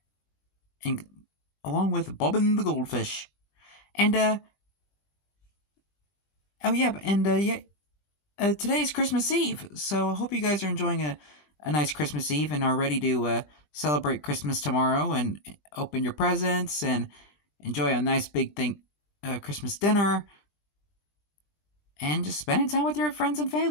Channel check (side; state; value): right; late; 20 ms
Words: And along with Bobbin the Goldfish. And, today's Christmas Eve. So I hope you guys are enjoying a nice Christmas Eve and are ready to celebrate Christmas tomorrow and open your presents and enjoy a nice big Christmas dinner and just spending time with your friends and